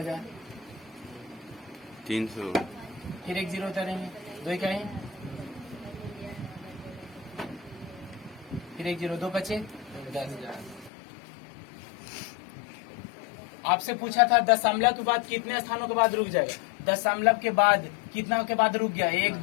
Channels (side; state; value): right; drops out; at 10.9 s